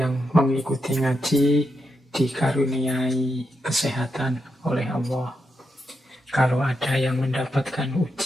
yang mengikuti ngaji dikaruniai kesehatan oleh Allah. Kalau ada yang mendapatkan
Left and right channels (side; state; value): both; normal; correlation 0.84